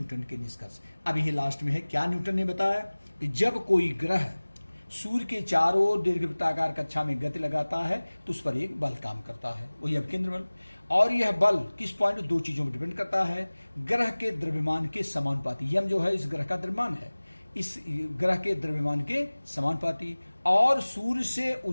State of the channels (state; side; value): inverted; both; correlation -1.00